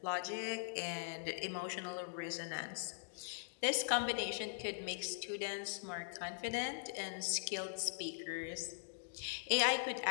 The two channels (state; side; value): silent; right; digital silence